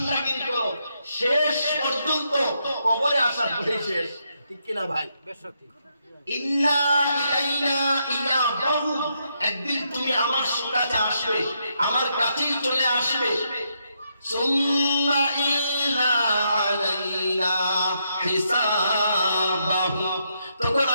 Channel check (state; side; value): inverted; both; correlation -0.79